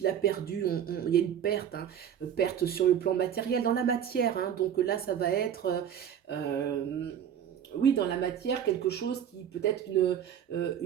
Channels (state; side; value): quieter; left; 9.1 dB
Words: a perdu. Il y a une perte, hein, perte sur le plan matériel, dans la matière, hein. Donc là, ça va être... euh, oui, dans la matière, quelque chose qui peut être